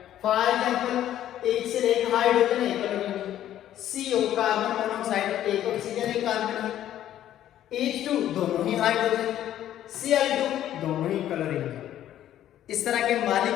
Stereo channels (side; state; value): right; quieter; 11.9 dB